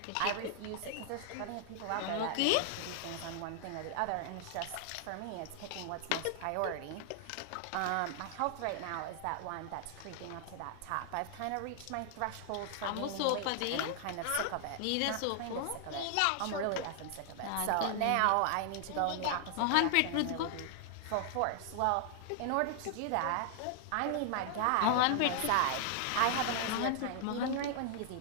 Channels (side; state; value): both; different; correlation 0.00